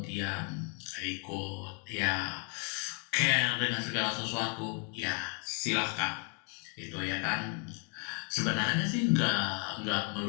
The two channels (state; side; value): quieter; right; 36.4 dB